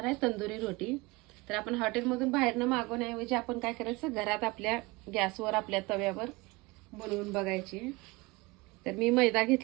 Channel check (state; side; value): quieter; left; 23.7 dB